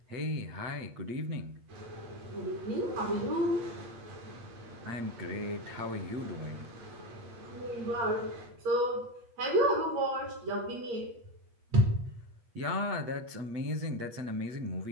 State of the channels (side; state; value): left; late; 8.5 ms